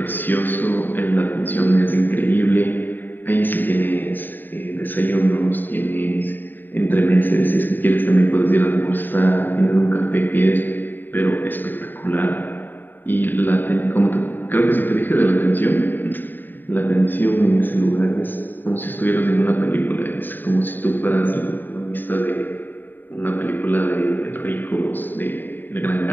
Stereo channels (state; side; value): late; right; 0.091 ms